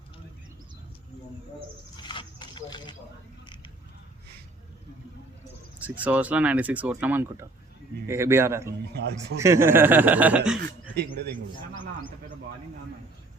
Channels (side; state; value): left; quieter; 3.1 dB